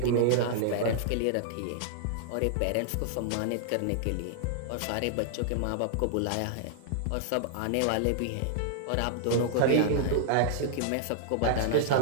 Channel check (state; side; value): different; both; correlation -0.01